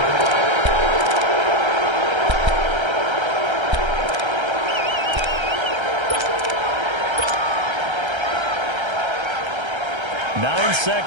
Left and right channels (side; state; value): left; late; 1.3 ms